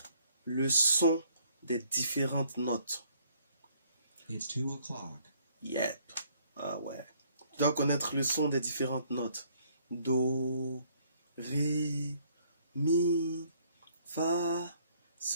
le son des différentes notes. It's 2 o'clock. Yep. Ah ouais. Tu dois connaître le son des différentes notes. Do, ré, mi, fa,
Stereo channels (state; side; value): inverted; both; correlation -0.64